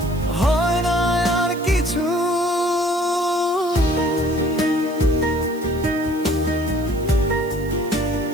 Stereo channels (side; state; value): right; noise; hiss, 21 dB below the sound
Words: হয় না আর কিছু।